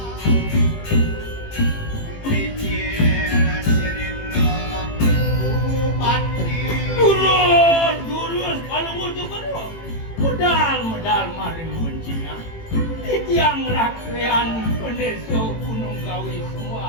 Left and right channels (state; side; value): late; right; 18 ms